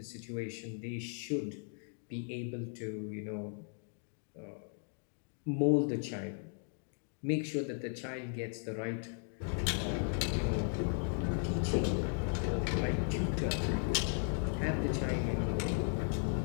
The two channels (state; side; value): silent; right; 53 dB below the other